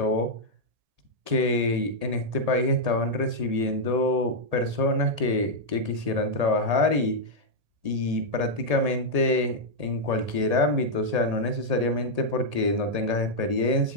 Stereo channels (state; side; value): late; left; 1.8 ms